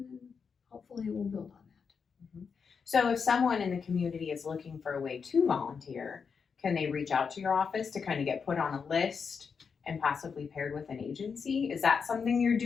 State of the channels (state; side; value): quieter; right; 5.9 dB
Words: then hopefully we'll build on that. So if someone in the community is looking for a way to volunteer, can they reach out to your office to kind of get put on a list and possibly paired with an agency? Is that something you're